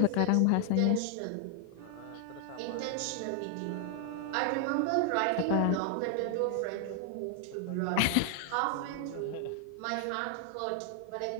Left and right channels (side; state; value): both; different; correlation 0.00